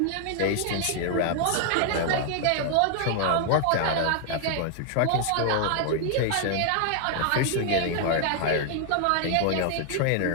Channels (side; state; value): both; different; correlation 0.00